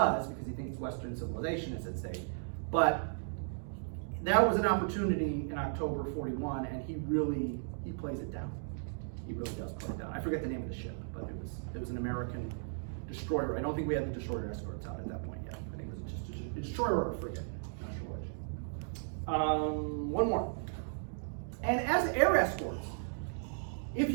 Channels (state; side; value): silent; left; digital silence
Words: because he thinks Western civilization is at stake, but that was an opportunity in October 41, and he plays it down. He really does play it down. I forget the name of the ship, but it was an American destroyer. I don't think we had the destroyer escorts out at that point yet. I think it was just a destroyer or a frigate. Not sure which. One more. And as air escorts, if